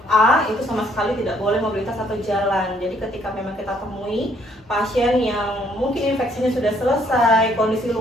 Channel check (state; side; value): normal; both; correlation 0.66